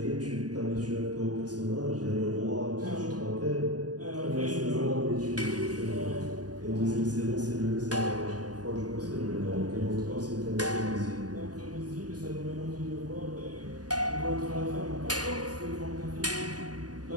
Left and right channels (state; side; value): late; left; 0.68 ms